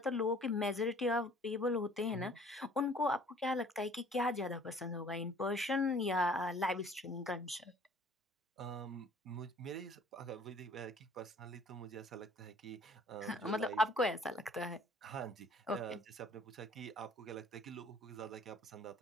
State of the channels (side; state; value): both; normal; correlation 0.54